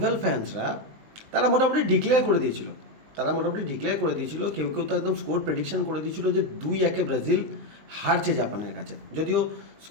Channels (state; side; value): late; left; 19 ms